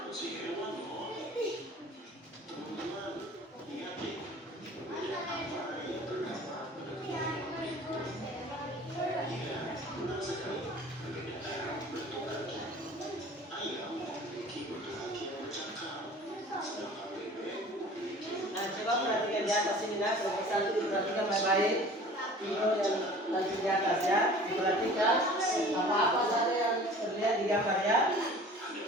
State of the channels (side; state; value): both; normal; correlation 0.45